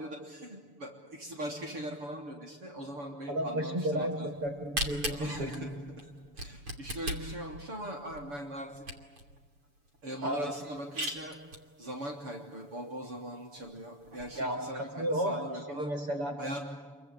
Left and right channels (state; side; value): late; left; 7.0 ms